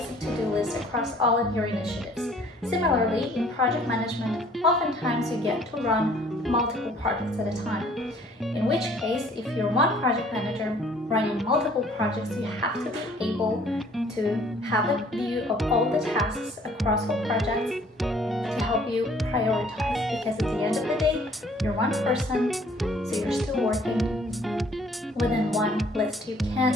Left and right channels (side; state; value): both; normal; correlation 0.57